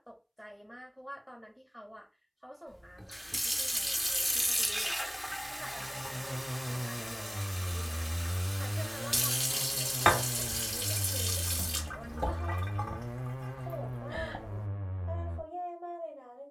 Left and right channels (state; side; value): identical; both; correlation 1.00